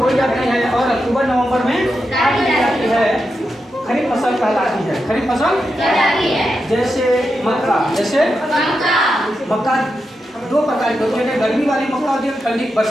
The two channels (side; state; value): both; normal; correlation 0.87